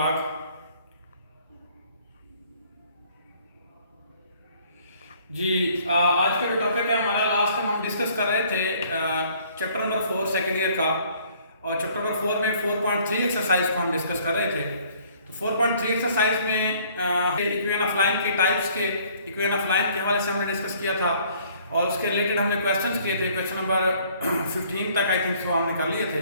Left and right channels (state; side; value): inverted; both; correlation -0.59